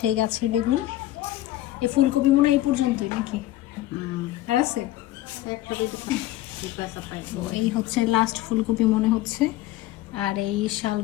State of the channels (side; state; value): right; quieter; 15.3 dB